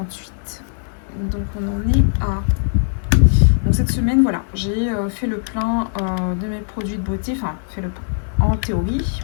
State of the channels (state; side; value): silent; right; 66 dB below the other